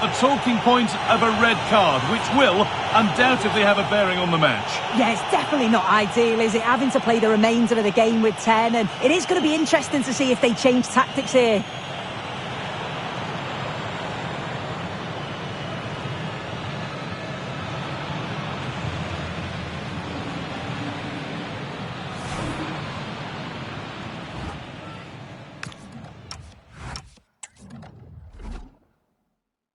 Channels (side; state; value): both; identical; correlation 1.00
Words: talking point of a red card, which will undoubtedly have a bearing on the match. Yeah, it's definitely not ideal, is it? Having to play the remainder of the game with 10, and it is going to be interesting to see if they change tactics here.